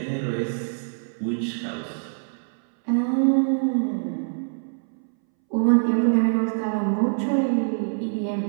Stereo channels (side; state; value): left; silent; 62 dB below the other